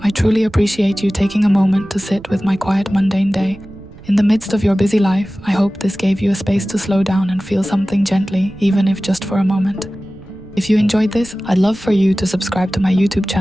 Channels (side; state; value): right; noise; rumble, 20 dB below the sound